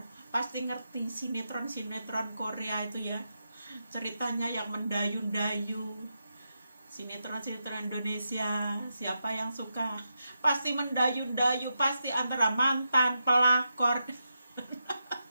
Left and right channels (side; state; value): both; inverted; correlation -0.86